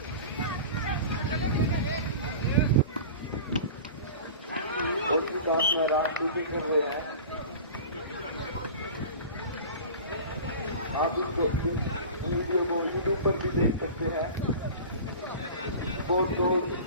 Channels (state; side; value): inverted; both; correlation -0.36